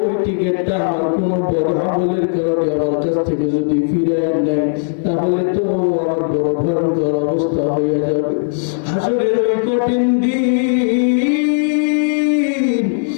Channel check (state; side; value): silent; right; 68 dB below the other